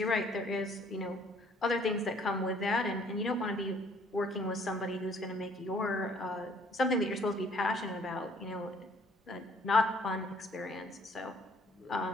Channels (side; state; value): both; normal; correlation 0.60